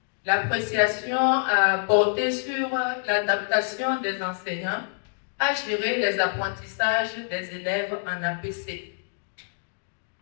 L'appréciation a porté sur l'adaptation des enseignants à gérer les apprentissages des élèves en APC.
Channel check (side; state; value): right; silent; digital silence